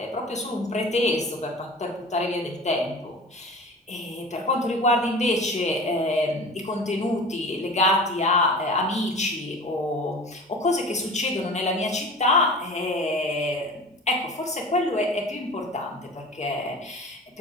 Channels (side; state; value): both; normal; correlation 0.38